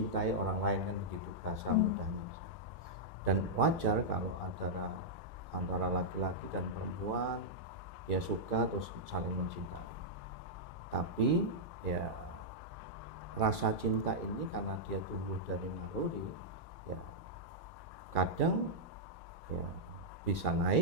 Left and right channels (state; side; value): normal; both; correlation -0.09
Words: orang lain, kan begitu bahasa mudahnya. Dan wajar kalau antara laki-laki dan perempuan ya suka terus saling mencintai. Tapi ya rasa cinta ini karena dia tumbuh dari naluri, ya kadang ya bisa